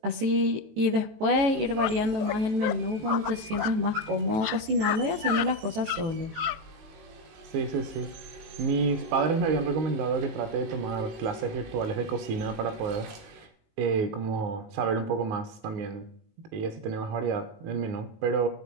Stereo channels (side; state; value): left; late; 18 ms